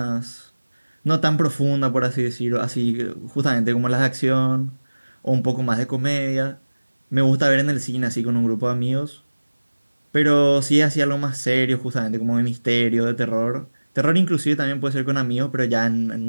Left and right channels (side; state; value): both; inverted; correlation -1.00